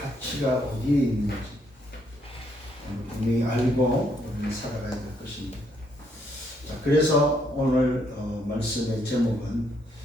어디에 있는지 분명히 알고 우리는 살아가야 될 것입니다. 자, 그래서 오늘 말씀의 제목은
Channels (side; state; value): both; normal; correlation 0.72